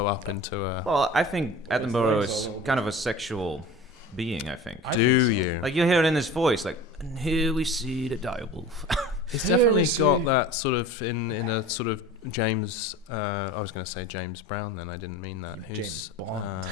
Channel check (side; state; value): both; normal; correlation 0.38